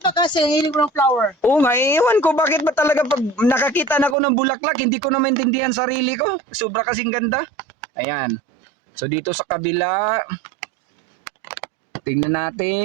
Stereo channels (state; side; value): drops out; left; at 4.2 s